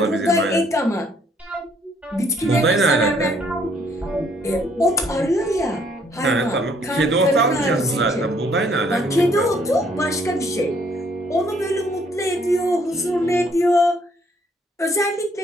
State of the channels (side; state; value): both; normal; correlation 0.65